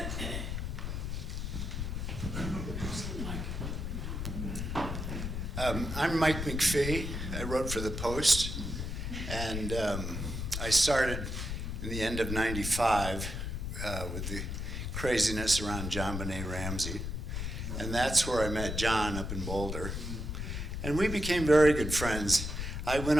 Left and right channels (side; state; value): left; noise; rumble, 4 dB below the sound